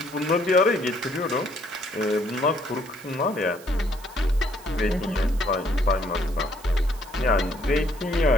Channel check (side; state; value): right; noise; hiss, 21 dB below the sound